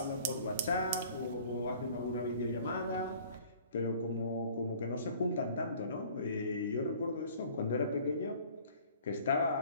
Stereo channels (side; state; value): both; inverted; correlation -0.52